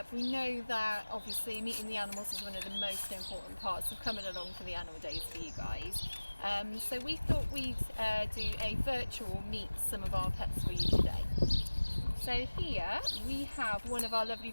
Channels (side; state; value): both; inverted; correlation -1.00